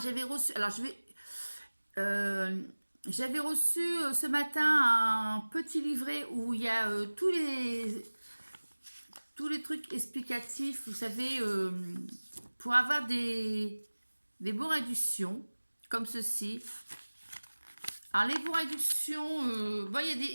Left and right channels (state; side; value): inverted; both; correlation -1.00